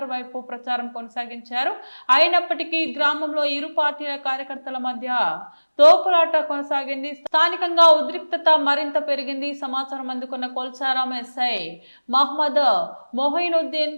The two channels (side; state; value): both; inverted; correlation -1.00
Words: వైపు ప్రచారం కొనసాగించారు. అయినప్పటికీ గ్రామంలో ఇరు పార్టీల కార్యకర్తల మధ్య తోపులాట కొనసాగింది. స్థానికంగా ఉద్రిక్తత మరింత పెరిగింది. సమాచారం అందుకున్న కొల్చారం ఎస్ఐ మహమ్మద్